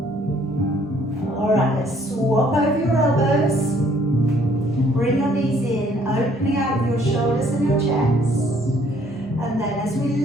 All right, let's swap over your elbows. Bring your knees in, opening out with your shoulders and your chest. And then as we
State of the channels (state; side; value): normal; both; correlation 0.62